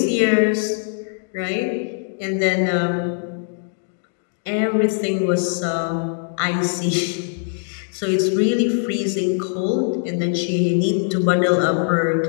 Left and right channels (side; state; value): right; silent; digital silence